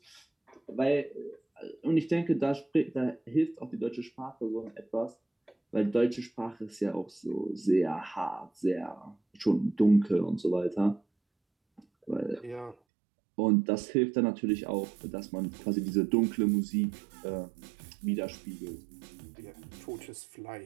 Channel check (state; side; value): drops out; left; at 12.8 s